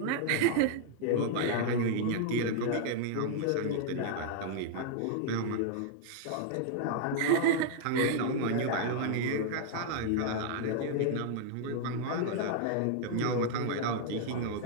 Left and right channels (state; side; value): different; both; correlation -0.01